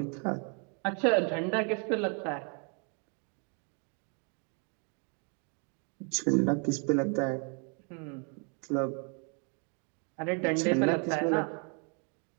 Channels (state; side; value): quieter; left; 38.3 dB